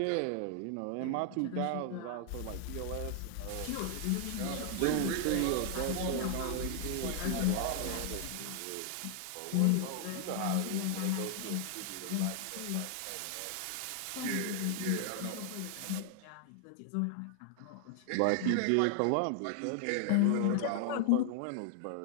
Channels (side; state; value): both; different; correlation 0.00